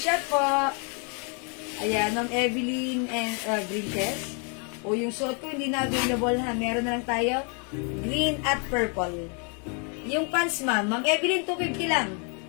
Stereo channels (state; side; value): quieter; right; 37.7 dB